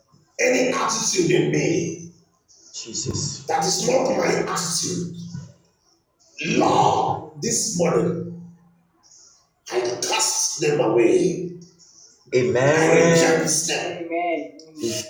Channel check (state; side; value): identical; both; correlation 1.00